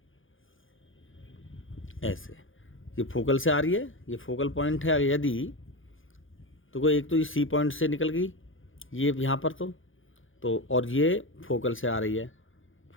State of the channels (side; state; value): right; late; 0.58 ms